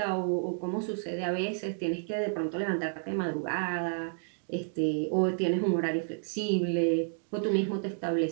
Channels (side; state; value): left; silent; digital silence